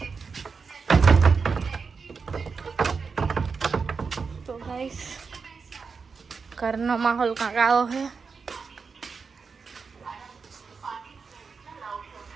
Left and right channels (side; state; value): left; quieter; 5.2 dB